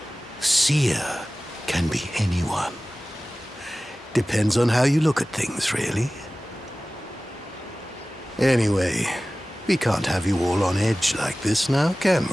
Seer can be anyone. Depends on how you look at things, really. Anyway, we can't have you all on edge like this now, can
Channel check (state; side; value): normal; both; correlation 0.97